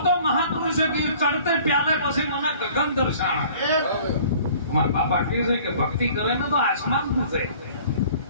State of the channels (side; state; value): both; inverted; correlation -0.51